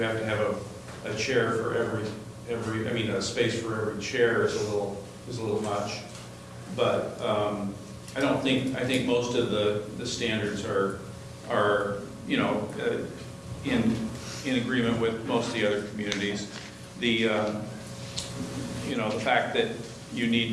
have to have a chair for a space for every chair is a little much. But I think most of the standards are in agreement with most of the other communities. the fact that you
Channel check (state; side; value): identical; both; correlation 1.00